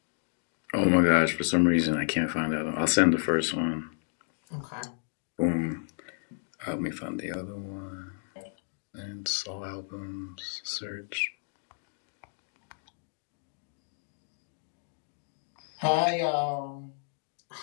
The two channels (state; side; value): silent; right; digital silence